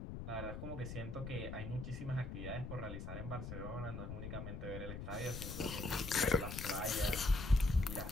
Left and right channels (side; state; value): left; noise; rumble, 6 dB below the sound